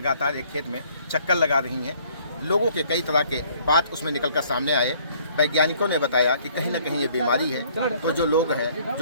एक खेत में चक्कर लगा रही हैं। लोगों के कई तरह के बात उसमें निकल कर सामने आए। वैज्ञानिकों ने बताया कि कहीं ना कहीं ये बीमारी है, तो जो लोग हैं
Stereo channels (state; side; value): inverted; both; correlation -0.60